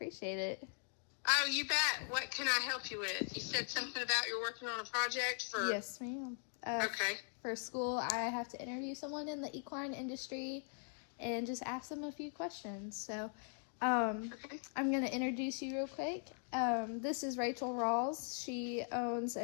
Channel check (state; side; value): silent; right; 51 dB below the other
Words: it. Oh, you bet. What can I help you with? You said something about you're working on a project for... Yes, ma'am. Okay. For school, I have to interview someone in the equine industry and just ask them a few questions. So I'm going to introduce you real quick. This is Rachel Rawls. She owns